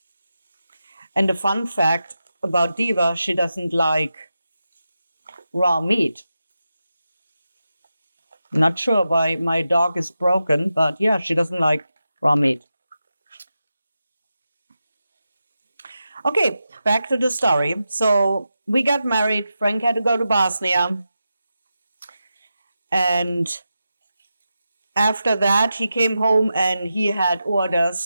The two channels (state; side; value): inverted; both; correlation -0.90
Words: And the fun fact about Diva, she doesn't like raw meat. Not sure why my dog is broken, but yeah, she doesn't like raw meat. Okay, back to the story. So we got married. Frank had to go to Bosnia. And after that, he came home and he had